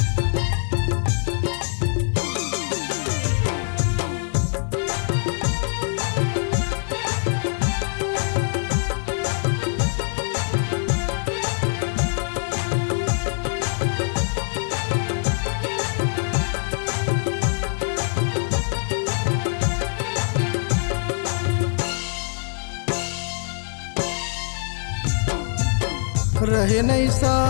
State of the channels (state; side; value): silent; right; 63 dB below the other